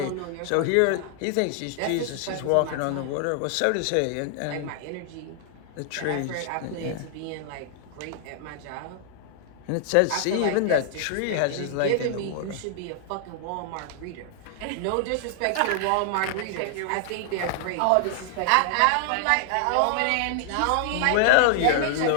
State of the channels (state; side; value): different; both; correlation 0.00